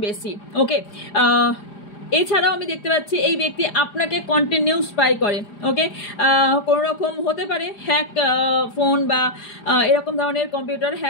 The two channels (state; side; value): late; right; 4.9 ms